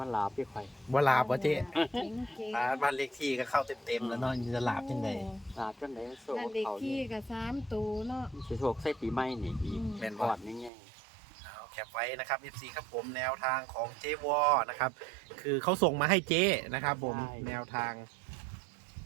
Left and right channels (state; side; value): drops out; left; at 10.7 s